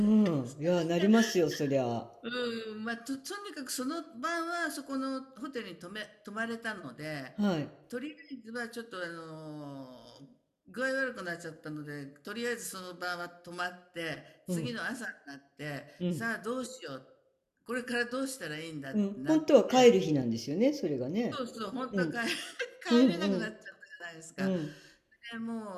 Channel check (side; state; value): both; identical; correlation 1.00